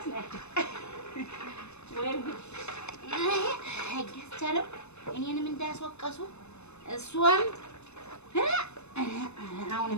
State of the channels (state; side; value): late; right; 0.81 ms